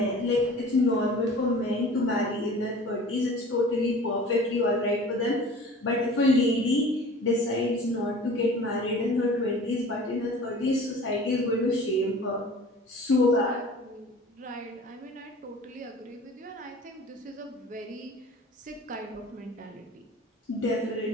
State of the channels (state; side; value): normal; both; correlation 0.43